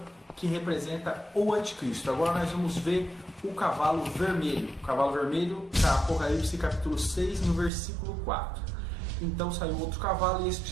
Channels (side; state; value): left; drops out; at 7.7 s